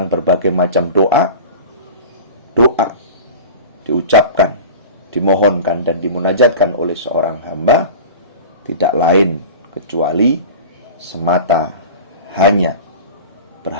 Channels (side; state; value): both; inverted; correlation -0.35